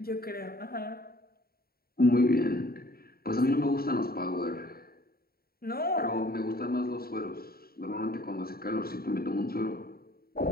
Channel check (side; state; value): right; late; 0.44 ms